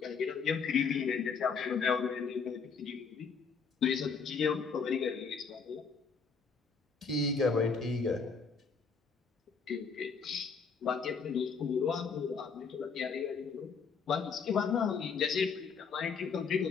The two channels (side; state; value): right; quieter; 5.4 dB